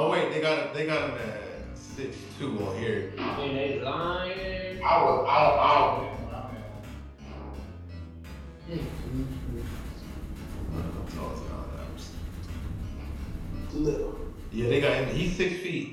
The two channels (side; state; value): both; identical; correlation 1.00